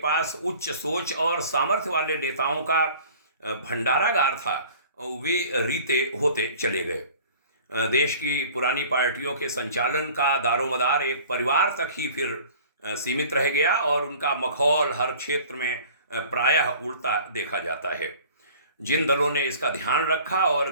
उच्च सोच और सामर्थ्य वाले नेताओं का भंडारागार था वे रीते होते चले गए। देश की पुरानी पार्टियों के संचालन का दारोमदार एक परिवार तक ही फिर सीमित रह गया और उनका मखौल हर क्षेत्र में प्रायः उड़ता देखा जाता है। जिन दलों ने इसका ध्यान रखा और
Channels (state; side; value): inverted; both; correlation -0.47